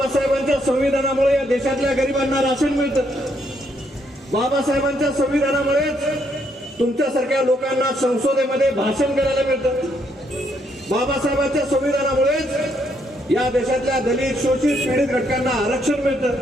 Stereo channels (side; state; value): both; normal; correlation 0.73